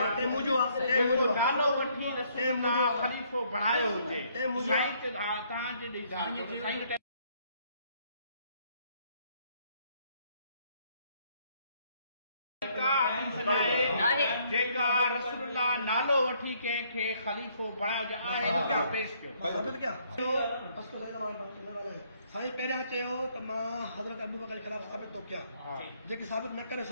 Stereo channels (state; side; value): inverted; both; correlation -0.67